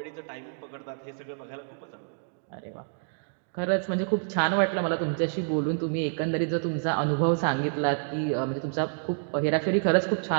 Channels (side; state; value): left; silent; digital silence